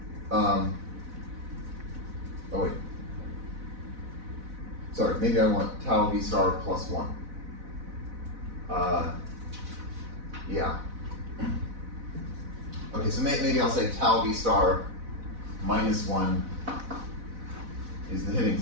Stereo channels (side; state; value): left; late; 4.0 ms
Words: Oh wait. Sorry, maybe I want tau V star plus 1. Yeah. Okay, so maybe I'll say tau V star minus 1 is the hitting